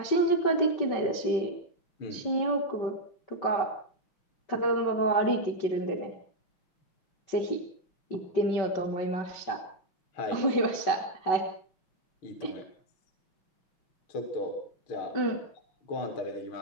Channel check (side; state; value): right; late; 5.3 ms